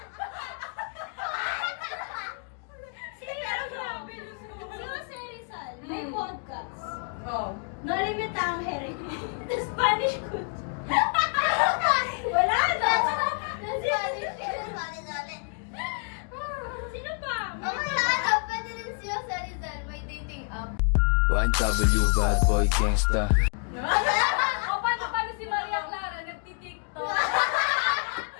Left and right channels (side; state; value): right; quieter; 39.7 dB